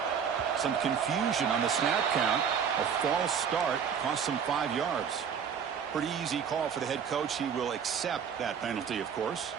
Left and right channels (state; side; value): quieter; left; 7.3 dB